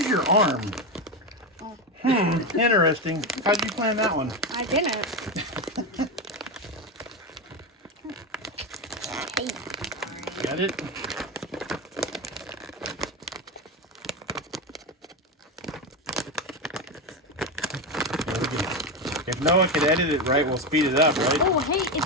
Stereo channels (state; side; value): normal; both; correlation 0.14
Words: your arm. Interesting. How'd you plan that one? I didn't. Got it? If Noah could edit it right, we'll speed it up, right? Oh, hey, it's